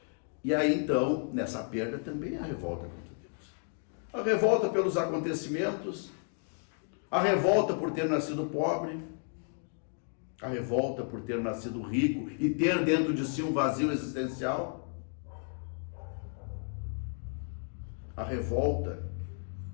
E aí então, nessa perda também há revolta contra Deus. A revolta pelos acontecimentos, a revolta por ter nascido pobre, A revolta por ter nascido rico e ter dentro de si um vazio existencial. A revolta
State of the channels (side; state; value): right; silent; 56 dB below the other